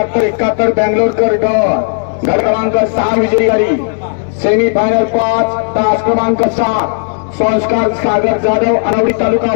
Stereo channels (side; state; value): right; silent; digital silence